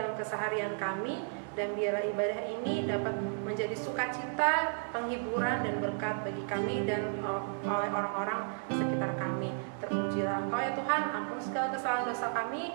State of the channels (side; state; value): left; silent; 56 dB below the other